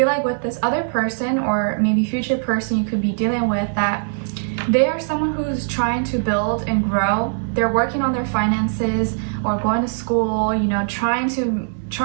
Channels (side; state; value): left; silent; digital silence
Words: like with this other person, or maybe future person you could be dealing with, that they are someone who's trying to build and grow. They're working on their finances or going to school, you know, trying